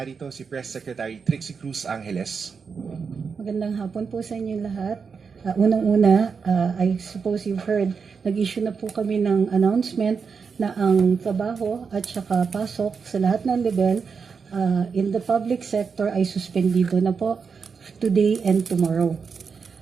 si Press Secretary Trixie Cruz Angeles. Magandang hapon po sa inyo lahat. Unang-una, I suppose you've heard, nag-issue na po kami ng announcement na ang trabaho at saka pasok sa lahat ng level in the public sector ay suspendido na po today and tomorrow.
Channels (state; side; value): quieter; left; 5.7 dB